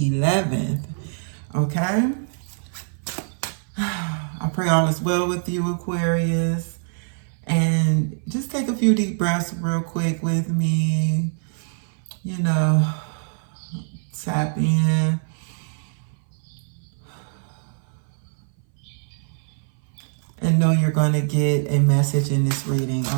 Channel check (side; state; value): left; silent; 60 dB below the other